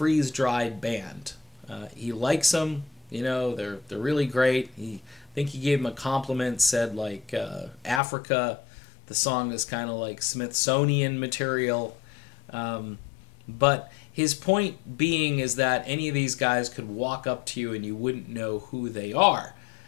band. He likes them, they're really great. I think he gave him a compliment, said like Africa, the song is kind of like Smithsonian material. But his point being is that any of these guys could walk up to you and you wouldn't know who they are.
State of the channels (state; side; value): drops out; right; at 8.0 s